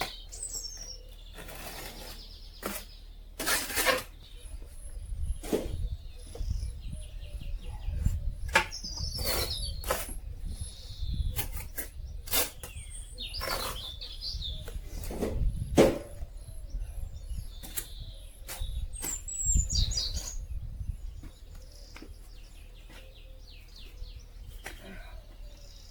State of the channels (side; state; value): both; identical; correlation 1.00